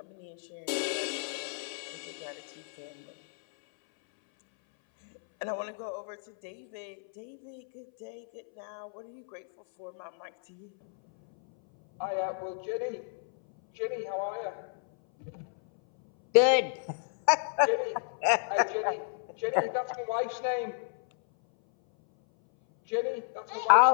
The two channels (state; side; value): silent; right; 57 dB below the other